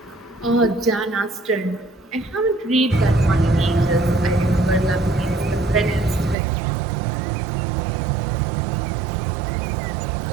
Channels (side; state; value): left; drops out; at 6.4 s